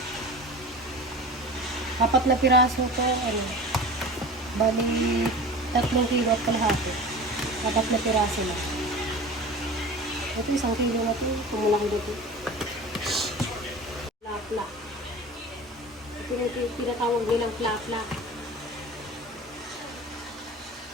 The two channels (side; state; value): both; normal; correlation 0.36